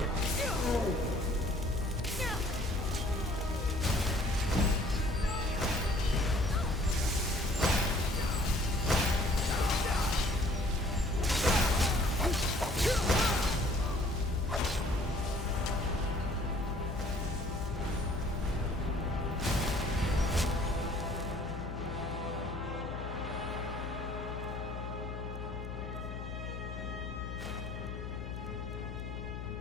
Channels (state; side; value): noise; left; hum, 7 dB below the sound